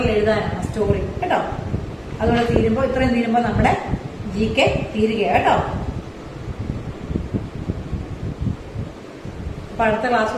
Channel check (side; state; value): both; identical; correlation 1.00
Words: എഴുതാനാണ് സ്റ്റോറി കേട്ടോ. അതുകൊണ്ട് ഇത്രയും തീരുമ്പോൾ നമ്മുടെ GK തീരുകയാണ് കേട്ടോ. അപ്പൊ അടുത്ത ക്ലാസ്